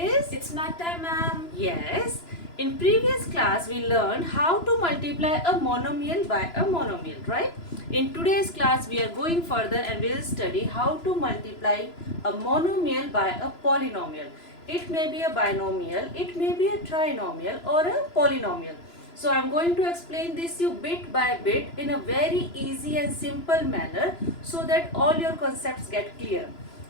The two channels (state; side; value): late; right; 3.0 ms